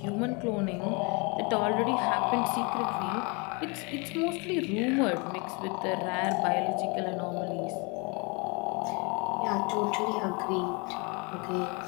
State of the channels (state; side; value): quieter; right; 30.9 dB